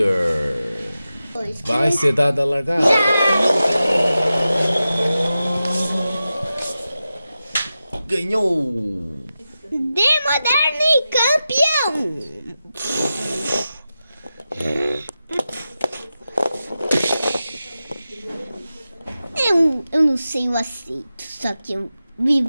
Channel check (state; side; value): inverted; both; correlation -0.92